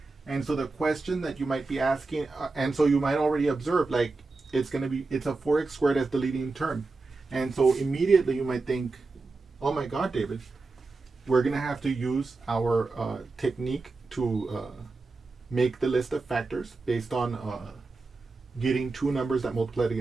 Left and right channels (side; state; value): left; quieter; 3.7 dB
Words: And so the question that you might be asking, and so you might already observe, like, it's a 4x squared as the leading term. And so immediately you might think, oh my God, David, we're going to have to use our technique to make the list of factors based on getting two numbers that multiply to